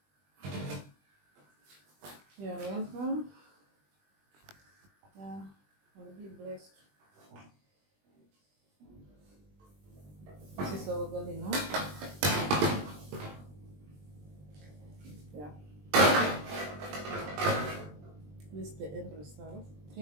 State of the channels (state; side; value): late; left; 20 ms